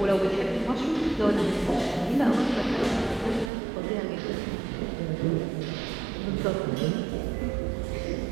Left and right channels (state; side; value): drops out; left; at 3.5 s